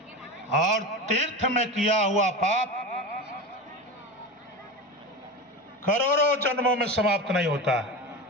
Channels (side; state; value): both; normal; correlation 0.25